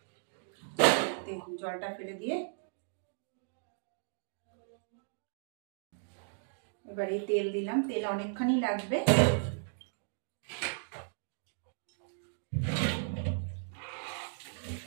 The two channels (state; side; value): silent; left; digital silence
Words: জলটা ফেলে দিয়ে এবার এই তেল দিলাম, তেল অনেকখানি লাগবে।